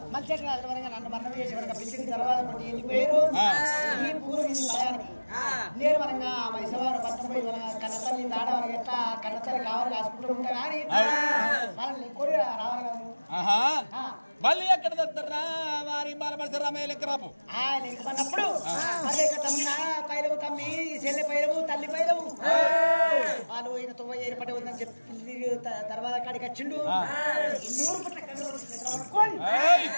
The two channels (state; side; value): inverted; both; correlation -1.00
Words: మళ్ళీ నన్ను మరణం చేసి పిలిచిన తర్వాత వెళ్ళిపోయారు ఈ పూర్వ భయానికి నేను మనగా మైసవారు పట్టపోయి మన కన్నతల్లి దాడ మనకి ఎట్లా కన్నతల్లి కావాలి కాసుకుంటూ ఉంటా కానీ వాళ్ళని కోరి రావాలి మళ్ళీ ఎక్కడ దొరుకుతారా వారి బాలమర్శ రామయ్య లెక్క రాపు అన్నప్పుడు మళ్ళీ తమ్మిన పైలవు తమ్మి చెల్లె పైలవు తల్లి పైలవు వాళ్ళు ఈయన తొవ్వ ఏర్పడి ఉందని చెప్పి తర్వాత కాడికి వచ్చిండు 200 పట్ల